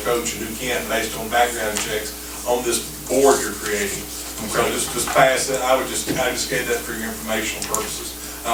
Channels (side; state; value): both; identical; correlation 1.00